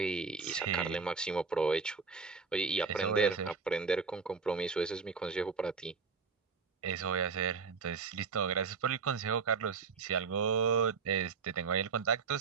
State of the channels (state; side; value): quieter; left; 5.1 dB